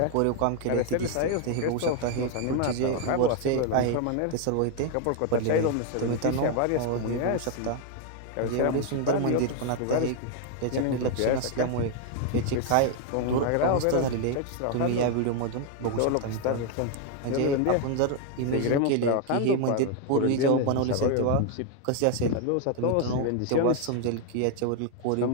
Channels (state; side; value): different; both; correlation 0.01